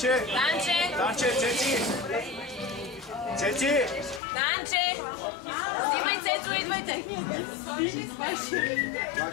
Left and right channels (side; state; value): right; drops out; at 4.2 s